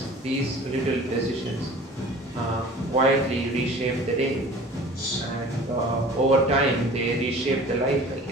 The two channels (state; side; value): normal; both; correlation 0.43